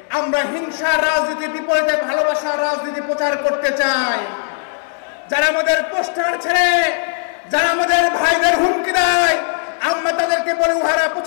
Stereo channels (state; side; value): silent; right; 67 dB below the other